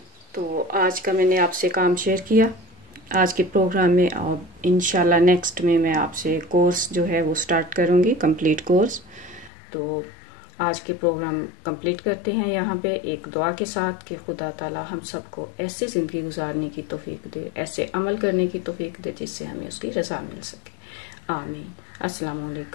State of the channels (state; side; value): drops out; right; at 9.5 s